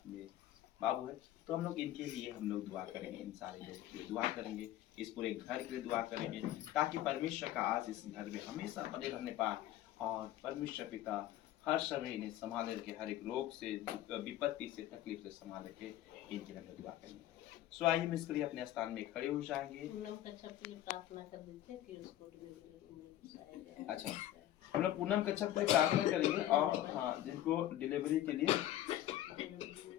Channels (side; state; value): right; quieter; 13.3 dB